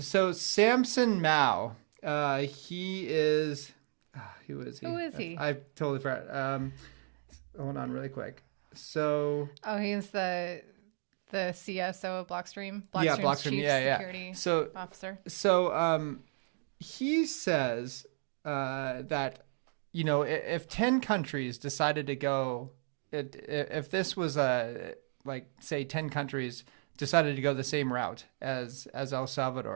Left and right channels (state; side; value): silent; left; 55 dB below the other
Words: So Samson Mao, he is, who is he? Who is he? I totally forgot. Hold on really quick. So. Oh, he's the CSO of Blockstream. Blockstream. Chief security officer. So he says that, if 10 countries decided to go, if this was say 10 countries decided to go the same route as El